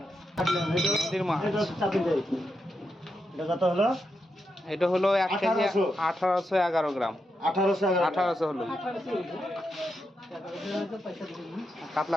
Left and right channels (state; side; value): normal; both; correlation 0.85